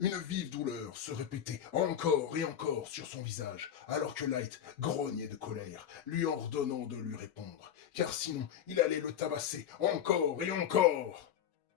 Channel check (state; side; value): quieter; right; 9.6 dB